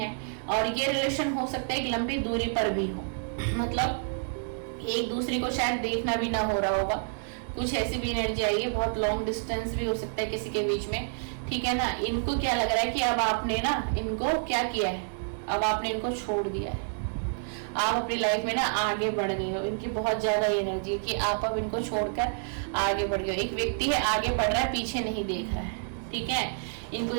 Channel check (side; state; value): left; silent; 59 dB below the other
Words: और ये रिलेशन हो सकता है एक लंबी दूरी पर भी हो, मतलब एक दूसरे को शायद देखना भी ना हो रहा होगा, कुछ ऐसी भी एनर्जी आई है, बहुत लॉन्ग डिस्टेंस भी हो सकता है किसी के बीच में, ठीक है ना। इनको क्या लग रहा है कि अब आपने ना इनको क्या किया है, अब आपने इनको छोड़ दिया है, आप अपनी लाइफ में ना आगे बढ़ गए हो। इनकी बहुत ज्यादा एनर्जी कि आप अब इनको छोड़कर आगे बढ़ गए। एक व्यक्ति है आगे बढ़ रहा है, पीछे नहीं देख रहा है, ठीक है। इनको